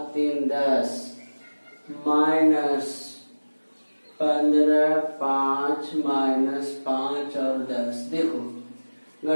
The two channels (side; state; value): both; inverted; correlation -1.00